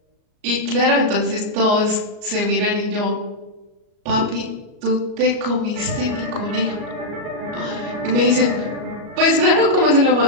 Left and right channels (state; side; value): late; left; 37 ms